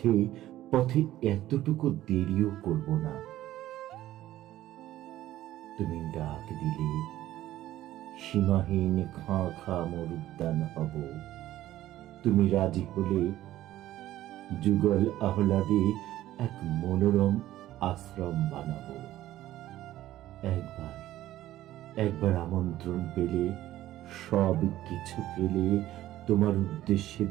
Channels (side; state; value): left; quieter; 14.3 dB